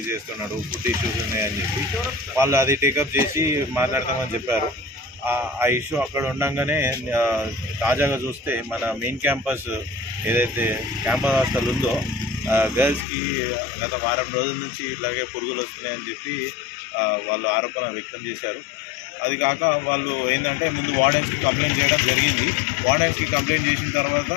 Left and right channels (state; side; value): drops out; right; at 13.1 s